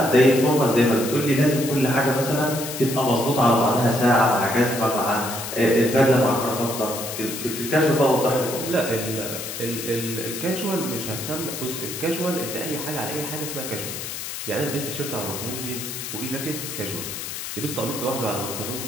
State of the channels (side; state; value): left; noise; hiss, 7 dB below the sound